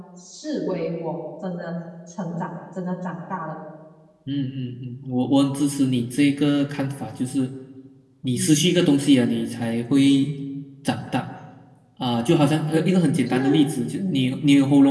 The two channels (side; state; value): both; identical; correlation 1.00